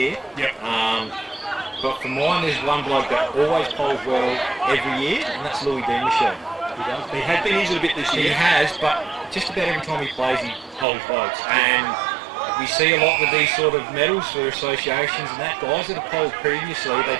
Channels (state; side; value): drops out; left; at 10.9 s